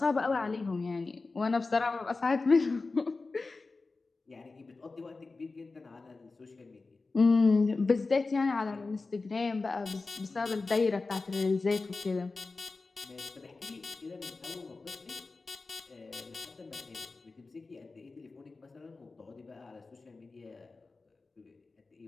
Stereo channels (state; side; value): quieter; right; 3.8 dB